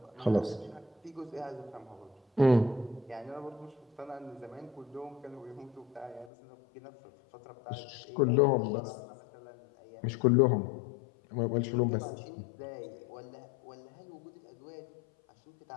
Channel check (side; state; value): right; drops out; at 6.3 s